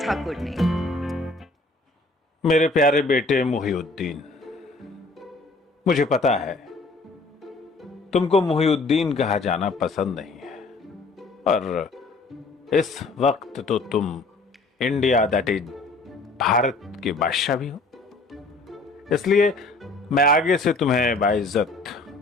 ने। मेरे प्यारे बेटे मुहिउद्दीन, मुझे पता है तुमको मुहिउद्दीन कहा जाना पसंद नहीं है, और इस वक्त तो तुम इंडिया दैट इज भारत के बादशाह भी हो। इसलिए मैं आगे से तुम्हें बाइज्जत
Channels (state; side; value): quieter; right; 3.2 dB